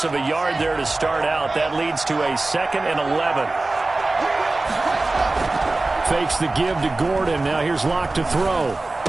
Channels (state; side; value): quieter; left; 3.1 dB